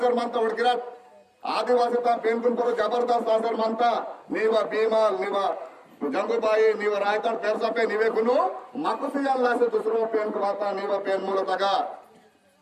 మంత ఉడికిరాట్ ఆదివాసితా పేర్కొను కొరు జబర్దస్త్ ఆసర్ మంత నీవ భీమాల్ నీవ జంగుబాయి నీవ రాయతాడ్ పెరసపే నీవే కును మక్కుసియాల్ లాసే दूसरो पेन कवाता నీవ पेन मूलतगा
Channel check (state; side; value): identical; both; correlation 1.00